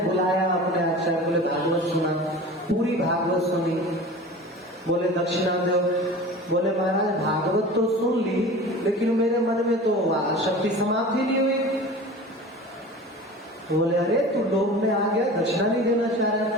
अपने आचार्य, बोले भागवत सुना, पूरी भागवत सुनी। बोले दक्षिणा दो। बोले महाराज भागवत तो सुन ली, लेकिन मेरे मन में तो आसक्ति समाप्त ही नहीं हुई। बोले अरे तू लोभ में आ गया, दक्षिणा नहीं देना चाह रहा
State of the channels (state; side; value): normal; both; correlation 0.37